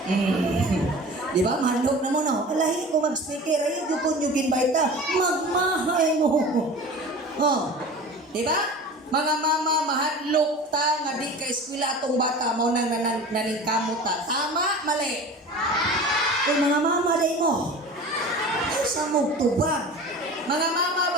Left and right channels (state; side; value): normal; both; correlation 0.37